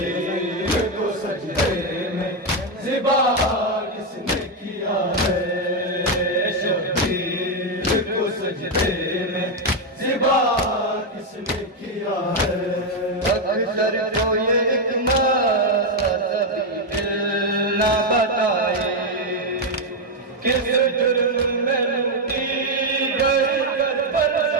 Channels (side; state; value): both; normal; correlation 0.03